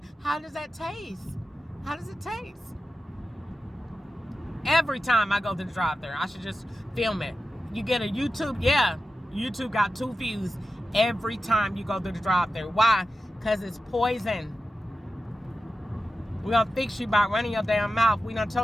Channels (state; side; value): normal; both; correlation 0.92